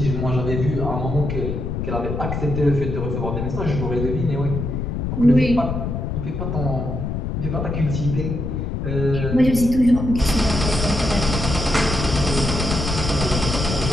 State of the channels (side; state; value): left; noise; rumble, 3 dB below the sound